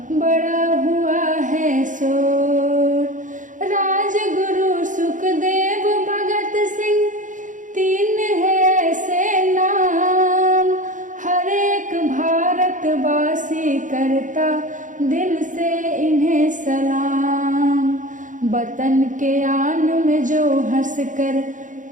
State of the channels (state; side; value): late; left; 0.37 ms